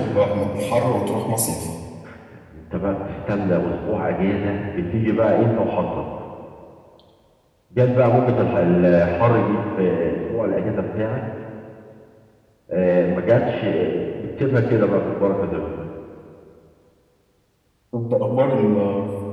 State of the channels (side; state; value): both; identical; correlation 1.00